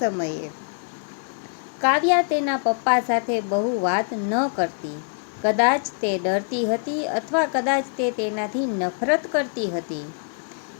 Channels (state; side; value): silent; right; 62 dB below the other